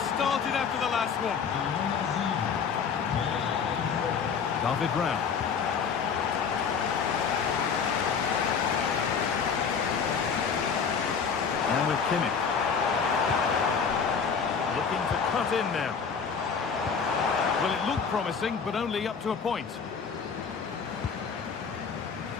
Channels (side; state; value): right; quieter; 6.2 dB